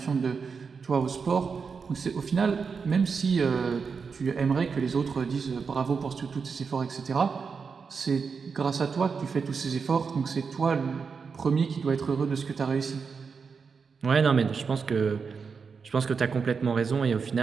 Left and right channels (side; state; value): left; quieter; 5.5 dB